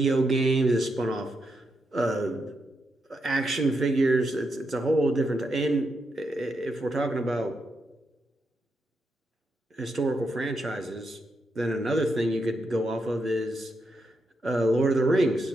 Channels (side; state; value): both; normal; correlation 0.83